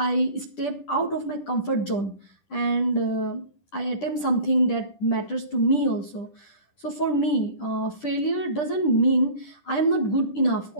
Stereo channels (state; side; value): late; right; 10 ms